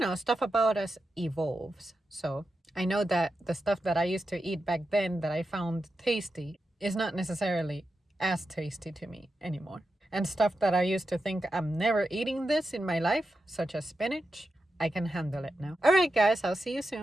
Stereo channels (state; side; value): normal; both; correlation 0.89